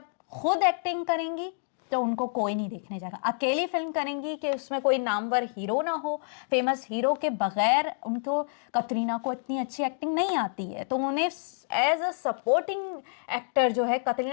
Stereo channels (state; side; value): silent; right; digital silence